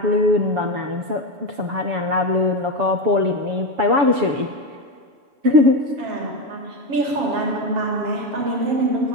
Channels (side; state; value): left; late; 7.1 ms